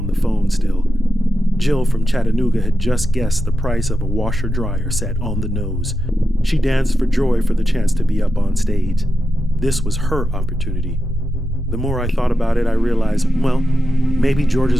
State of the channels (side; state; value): both; normal; correlation 0.90